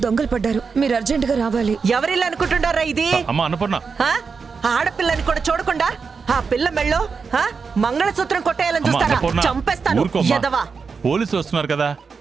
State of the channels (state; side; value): quieter; left; 5.3 dB